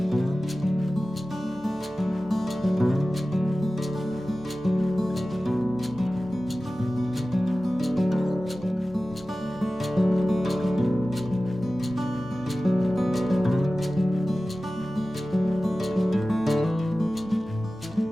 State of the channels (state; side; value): normal; both; correlation 0.96